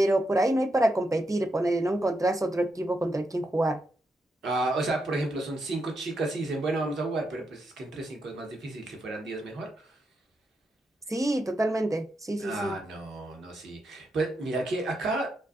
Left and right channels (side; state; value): both; normal; correlation 0.83